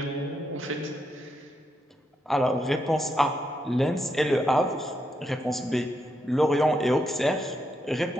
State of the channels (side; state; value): both; normal; correlation 0.81